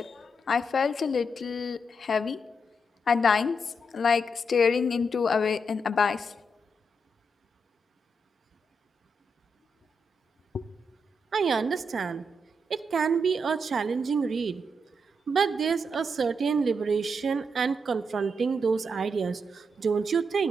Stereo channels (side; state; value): both; normal; correlation 0.81